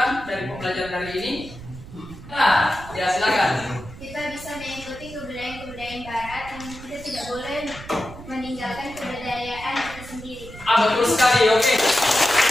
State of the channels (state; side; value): noise; right; rumble, 15 dB below the sound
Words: dari pembelajaran hari ini? Nah, ya silakan. Kita bisa mengikuti kebudayaan barat yang kita tidak boleh meninggalkan kebudayaan kita sendiri. Betul sekali, oke.